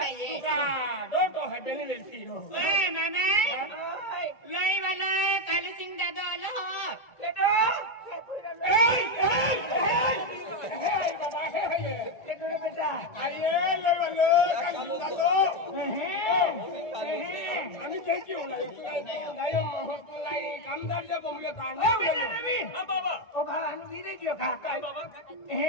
का डोटो हाय बेली वेलती हो ओय मामा ओय लई वाला कालू सिंग दादा आलो हो केटो ए बाबा हे केटो रे बेटा आये ले वाले काली दादो आणि काय की होला नाही महत्वलाई कामदारच्या बोंबले ताणे ओ बेटा रवि हां बाबा ओ भाला नु वीरे गयो खा काय बाबा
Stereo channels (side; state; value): right; late; 2.2 ms